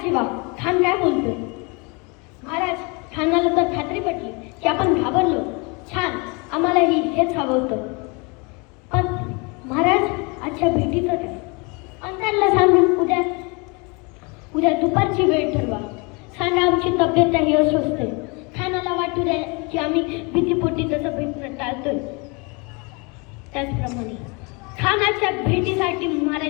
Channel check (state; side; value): quieter; right; 30.3 dB